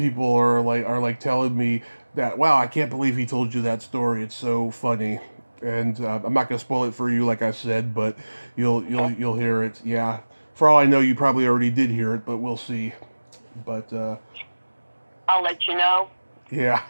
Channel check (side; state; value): both; inverted; correlation -1.00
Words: are like telling me that, wow, I can't believe he told you that story. It's so funny. And I'm not gonna spoil it for you, like I said, but you'll hear it. Yeah, for all I know, you probably already did hear it, but we'll see. But I'll let you know. Yeah.